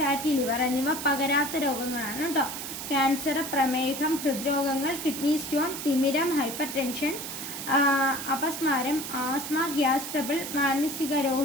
ലിവർ എന്നിവ പകരാത്ത രോഗങ്ങളാണ് കേട്ടോ. ക്യാൻസർ, പ്രമേഹം, ഹൃദ്രോഗങ്ങൾ, കിഡ്നി സ്റ്റോൺ, തിമിരം, ഹൈപ്പർ ടെൻഷൻ, അപസ്മാരം, ആസ്മ, ഗ്യാസ് ട്രബിൾ, മാനസിക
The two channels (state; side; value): noise; right; hiss, 7 dB below the sound